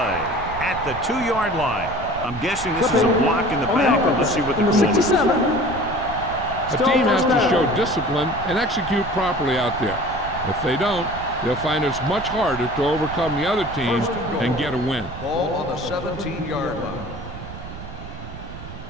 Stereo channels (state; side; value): noise; right; rumble, 12 dB below the sound